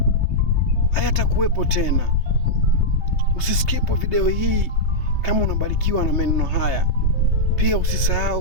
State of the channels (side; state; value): right; late; 3.4 ms